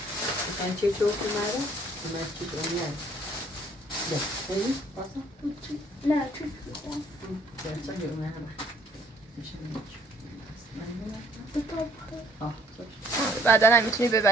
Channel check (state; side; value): normal; both; correlation 0.61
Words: مثلا چه چوب اومده؟ من چه اومده؟ ده خیلی؟ باسا؟ نه چیز بودم درسا یه اومده میشه بعدا هم میتونی